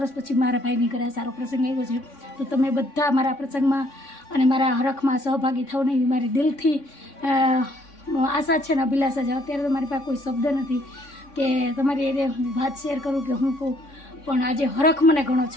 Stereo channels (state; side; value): late; right; 3.6 ms